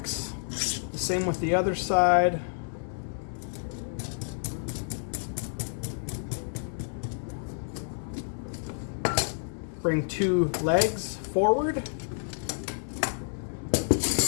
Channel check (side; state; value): right; silent; digital silence